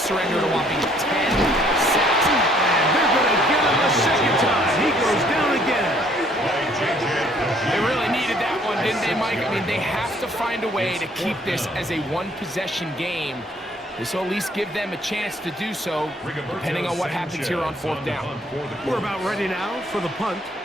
a whopping 10 sacks. And they're going to get him a second time. He goes down again. They really needed that one, didn't they, Mike? I mean, they have to find a way to keep this as a one-possession game. This will at least give them a chance to do so, depending on what happens here on 4th down. We're about ready now for the punt,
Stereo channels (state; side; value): normal; both; correlation 0.62